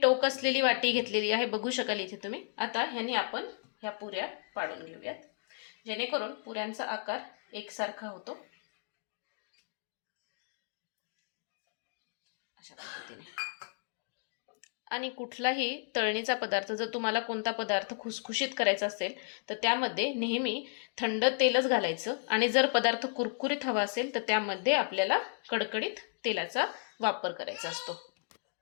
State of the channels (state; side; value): silent; right; digital silence